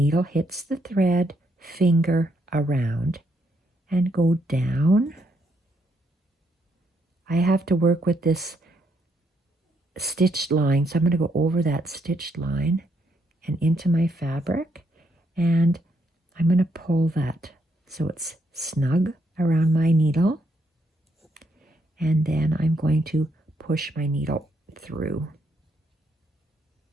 hits the thread, finger around, and go down. I have to work with this stitched line, so I'm going to go over that stitched line and into my fabric, and I'm going to pull that so it's snug around my needle, and then I'm going to push my needle through.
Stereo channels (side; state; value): both; normal; correlation 0.75